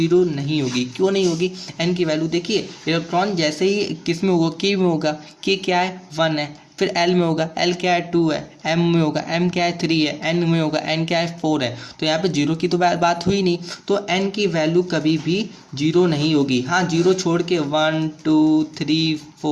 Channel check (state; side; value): identical; both; correlation 1.00